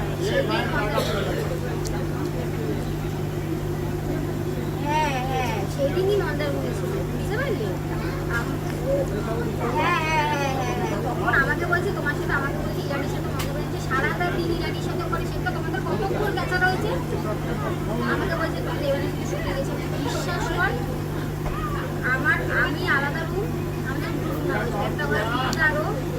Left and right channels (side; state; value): both; identical; correlation 1.00